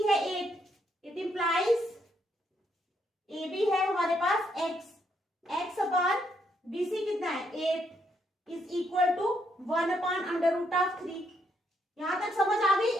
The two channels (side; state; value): both; normal; correlation 0.74